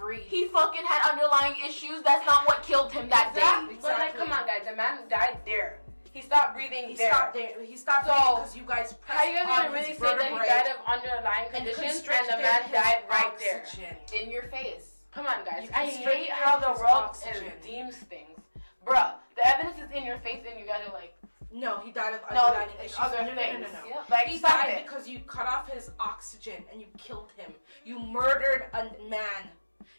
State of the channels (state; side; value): inverted; both; correlation -1.00